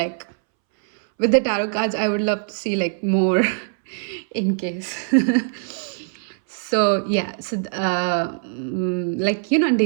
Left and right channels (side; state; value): left; silent; 64 dB below the other